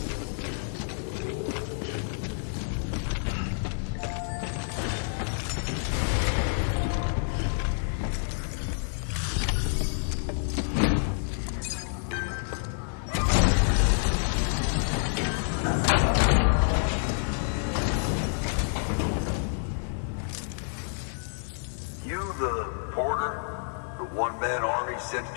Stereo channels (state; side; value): silent; right; digital silence